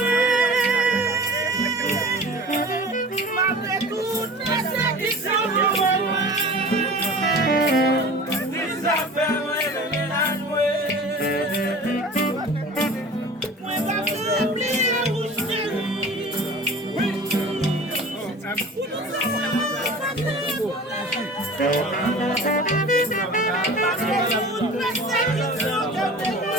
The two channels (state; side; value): normal; both; correlation 0.39